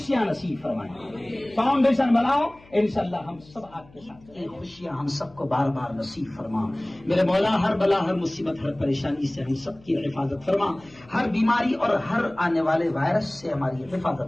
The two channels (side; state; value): left; noise; hum, 26 dB below the sound